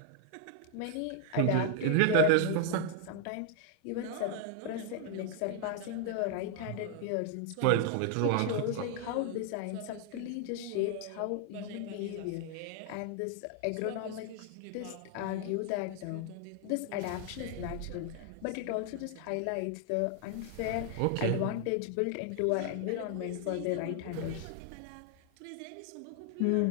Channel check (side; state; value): both; different; correlation 0.00